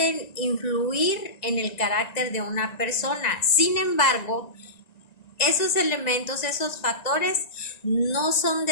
influir en el carácter de una persona. Sin embargo, esos elementos, esos factores no son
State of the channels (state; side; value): late; right; 1.9 ms